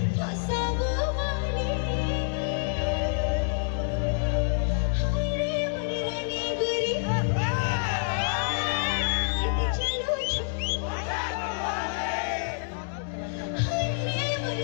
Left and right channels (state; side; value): silent; right; digital silence